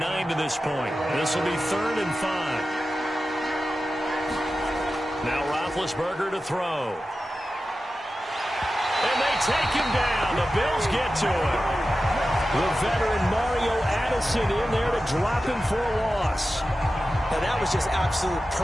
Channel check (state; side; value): normal; both; correlation 0.93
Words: to this point. This will be 3rd and 5. Now Roethlisberger to throw. And they take him down. The Bills get to him. The veteran Mario Addison in there to drop him for a loss. Now that was just absolute